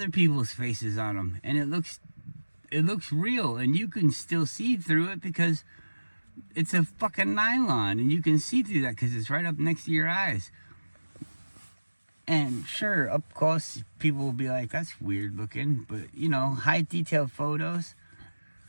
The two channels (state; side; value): inverted; both; correlation -1.00